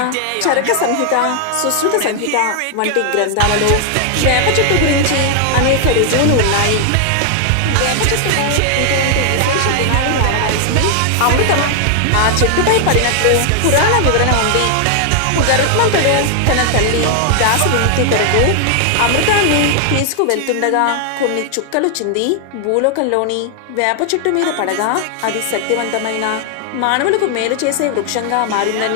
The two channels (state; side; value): different; both; correlation 0.00